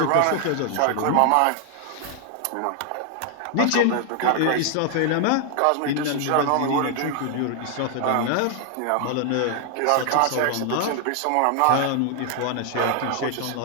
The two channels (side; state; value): both; different; correlation 0.00